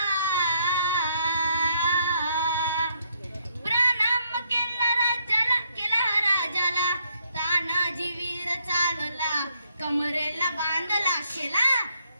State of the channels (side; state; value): both; inverted; correlation -0.73